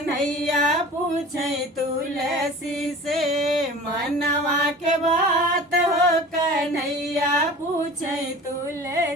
पूछे तुलसी से मनवा के बात हो। कन्हैया पूछे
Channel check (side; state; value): both; normal; correlation 0.40